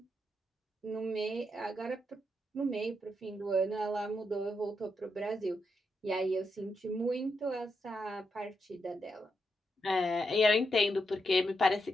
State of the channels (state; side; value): normal; both; correlation 0.83